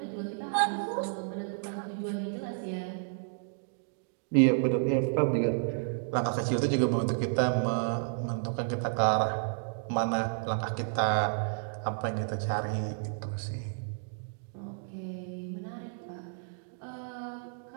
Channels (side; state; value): left; silent; digital silence